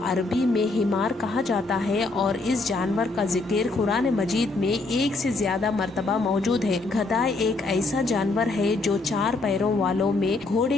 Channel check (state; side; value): quieter; right; 3.4 dB